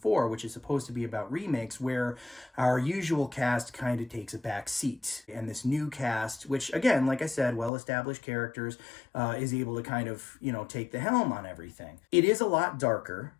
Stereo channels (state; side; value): drops out; right; at 7.7 s